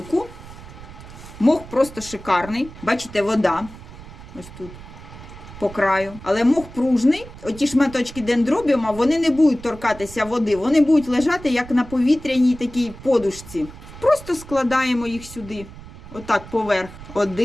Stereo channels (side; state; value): right; noise; rumble, 16 dB below the sound